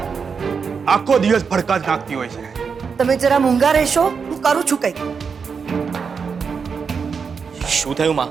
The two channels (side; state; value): left; quieter; 5.8 dB